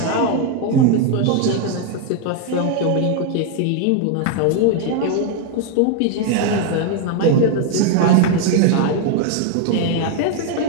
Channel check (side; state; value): both; different; correlation 0.01